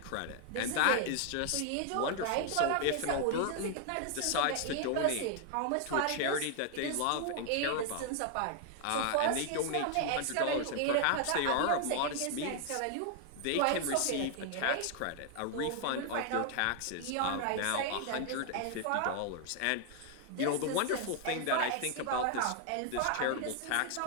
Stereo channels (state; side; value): different; both; correlation 0.00